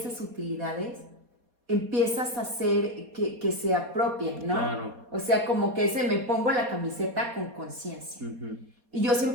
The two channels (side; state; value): left; late; 4.2 ms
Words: utilidades, empiezas a hacer que se apropien, ¿no? Claro. O sea, como que me pongo la camiseta con conciencia. Y yo